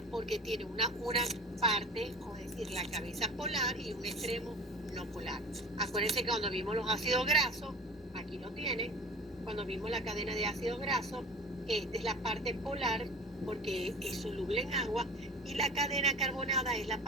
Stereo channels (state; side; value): normal; both; correlation 0.39